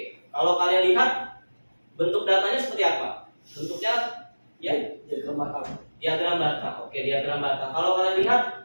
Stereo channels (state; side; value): inverted; both; correlation -1.00